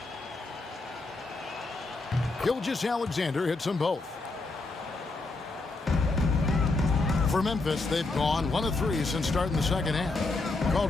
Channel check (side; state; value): right; quieter; 3.4 dB